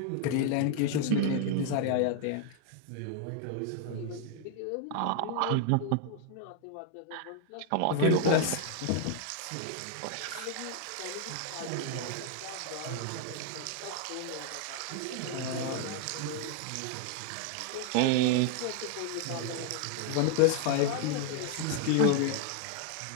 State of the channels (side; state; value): both; different; correlation 0.00